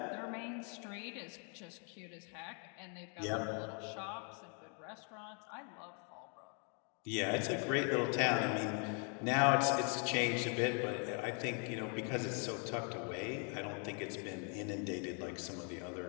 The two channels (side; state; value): right; quieter; 40.0 dB